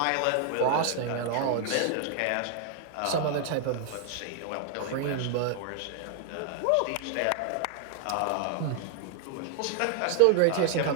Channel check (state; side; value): different; both; correlation 0.00